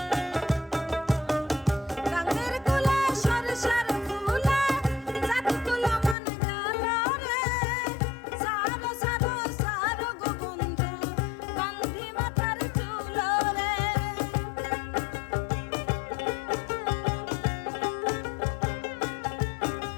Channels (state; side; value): drops out; right; at 6.2 s